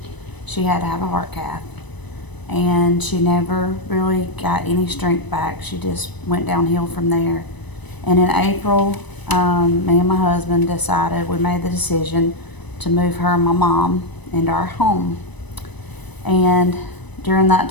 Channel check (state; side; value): late; right; 1.0 ms